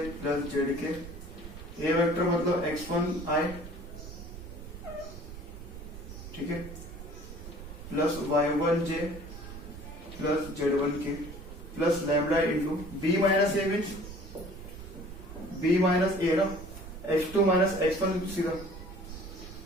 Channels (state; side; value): noise; right; rumble, 12 dB below the sound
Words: plus Z k. A vector मतलब एक्स वन आई, ठीक है, plus y one j plus z one k plus lambda into B minus A means B minus A ना, x2 minus x1 सीधा